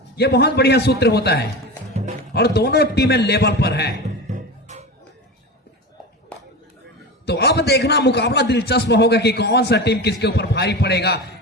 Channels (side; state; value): both; normal; correlation 0.26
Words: यह बहुत बढ़िया सूत्र होता है और दोनों टीमें लेवल पर है। तो अब देखना मुकाबला दिलचस्प होगा कि कौन सा टीम किसके ऊपर भारी पड़ेगा,